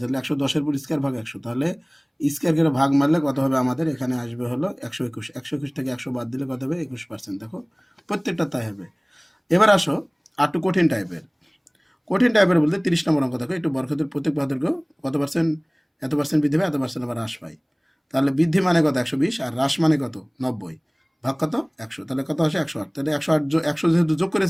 110-এর উপর স্কোয়ার ভাগ 100, তাহলে স্কোয়ার করে ভাগ মারলে কত হবে? আমাদের এখানে আসবে হলো 121। 121 থেকে 100 বাদ দিলে কত হবে? 21%। দেখো প্রত্যেকটা তাই হবে। এবার আসো আর একটু কঠিন টাইপের বলতে 30 নম্বর অঙ্ক। দেখো একটু বর্গক্ষেত্রের প্রত্যেক বাহুর দৈর্ঘ্য কত পার্সেন্ট, এত পার্সেন্ট বৃদ্ধি পায়, এত পার্সেন্ট আবার হ্রাস পায়। তাহলে বৃদ্ধি মানে কত? 120, আর হ্রাস মানে কত? 90। ভাগ কত? 100। তাহলে কত আসে? 108। তাহলে 100 যেহেতু যোগ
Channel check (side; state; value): both; identical; correlation 1.00